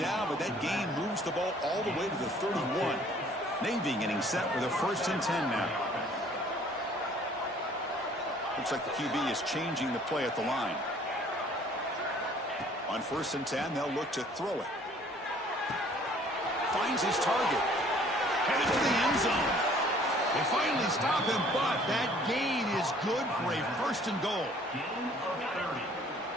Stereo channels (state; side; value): normal; both; correlation 0.56